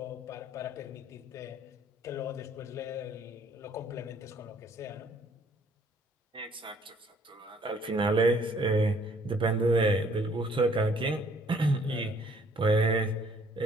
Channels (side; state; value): both; normal; correlation 0.61